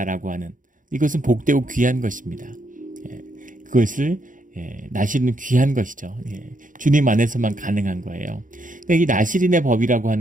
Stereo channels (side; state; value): left; late; 0.38 ms